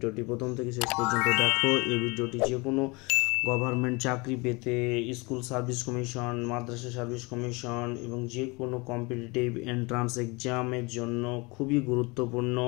প্রথম থেকে শেষ পর্যন্ত দেখো। এই ভিডিওটি যে কোনো গভর্নমেন্ট চাকরি পেতে, স্কুল সার্ভিস কমিশন, মাদ্রাসা সার্ভিস কমিশন এবং যে কোনো কম্পিটিটিভ এন্ট্রান্স এক্সামের জন্য খুবই গুরুত্বপূর্ণ।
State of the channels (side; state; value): right; quieter; 26.7 dB